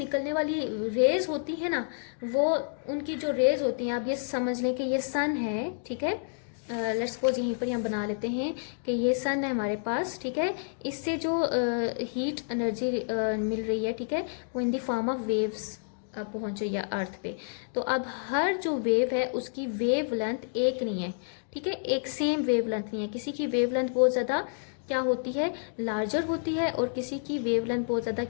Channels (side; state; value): right; silent; digital silence